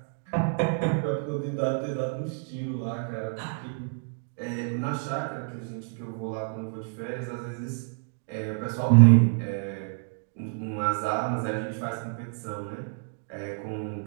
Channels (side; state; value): left; silent; 59 dB below the other